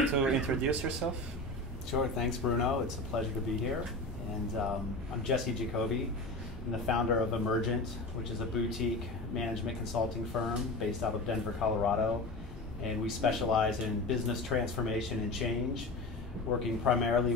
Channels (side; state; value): both; normal; correlation 0.29